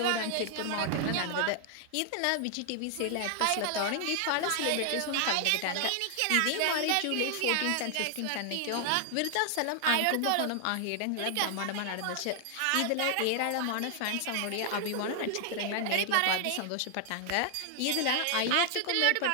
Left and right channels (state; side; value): different; both; correlation 0.00